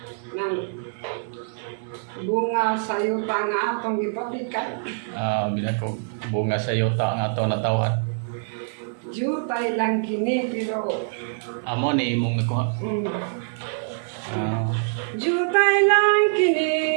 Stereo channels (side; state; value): left; silent; digital silence